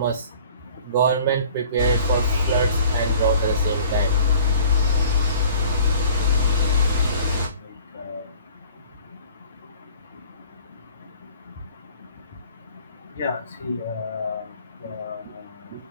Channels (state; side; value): inverted; both; correlation -0.50